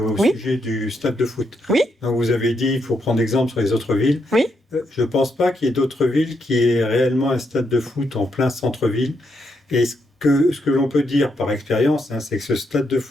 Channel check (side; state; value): both; normal; correlation 0.79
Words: sujet du stade de foot. Oui. Donc vous avez dit qu'il faut prendre exemple sur les autres villes. Oui. Je ne pense pas qu'il y ait d'autres villes qui aient réellement un stade de foot en plein centre-ville. Est-ce ce que l'on peut dire par expérience, hein, c'est que ce stade de